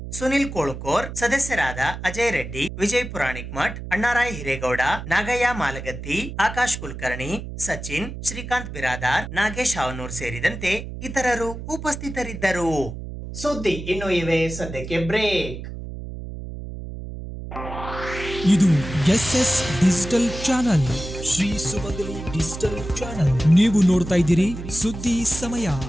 ಸುನಿಲ್ ಕೋಳುಕೋರ್, ಸದಸ್ಯರಾದ ಅಜಯ್ ರೆಡ್ಡಿ, ವಿಜಯ್ ಪುರಾಣಿಕ್ ಮಠ್, ಅಣ್ಣಾರಾಯ್ ಹಿರೇಗೌಡ, ನಾಗಯ್ಯ ಮಾಲಗತ್ತಿ, ಆಕಾಶ್ ಕುಲಕರ್ಣಿ, ಸಚಿನ್, ಶ್ರೀಕಾಂತ್ ಬಿರಾದಾರ್, ನಾಗೇಶ್ ಹಾವನೂರ್ ಸೇರಿದಂತೆ ಇತರರು ಉಪಸ್ಥಿತರಿದ್ದರು. ಸುದ್ದಿ ಇನ್ನು ಇವೆ, ಸದ್ಯಕ್ಕೆ ಬ್ರೇಕ್. ಇದು SS ಡಿಜಿಟಲ್ ಚಾನಲ್, ಶ್ರೀ ಸುಮಂಗಲಿ ಡಿಜಿಟಲ್ ಚಾನಲ್. ನೀವು ನೋಡ್ತಾ ಇದ್ದೀರಿ ಸುದ್ದಿ ಸಮಯ,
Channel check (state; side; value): noise; right; hum, 9 dB below the sound